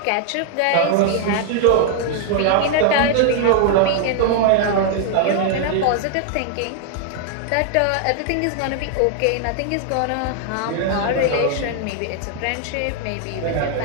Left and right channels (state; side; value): different; both; correlation 0.00